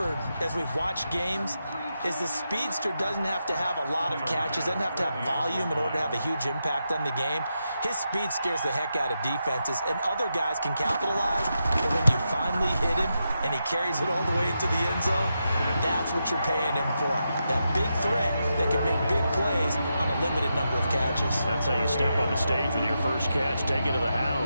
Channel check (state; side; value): inverted; both; correlation -0.86